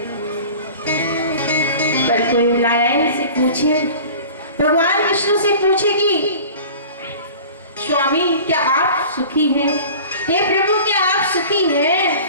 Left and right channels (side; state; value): both; inverted; correlation -0.41